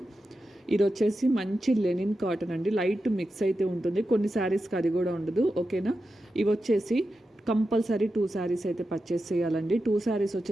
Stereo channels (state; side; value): normal; both; correlation 0.90